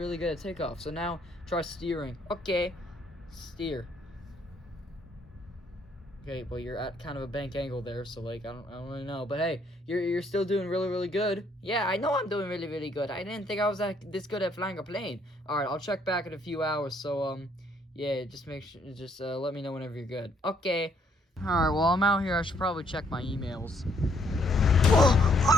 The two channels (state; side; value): normal; both; correlation 0.68